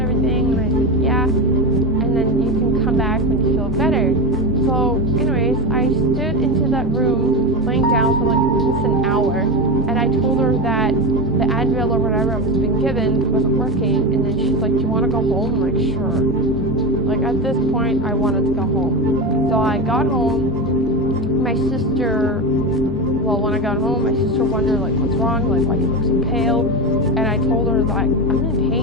And I said, yeah. And then you can come back when you feel better. So, anyways, I stood into that room, laying down for like almost an hour. And I told her that the Advil or whatever I was being given wasn't working. And then she's like, do you want to go home? I'm like, sure. Like, at this point, I wanted to go home. So I got home. My sister, well, when I got home, my sister wondered, like, what's wrong? Like, why do you look so pale? And I told her, like, I'm in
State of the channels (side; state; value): both; normal; correlation 0.17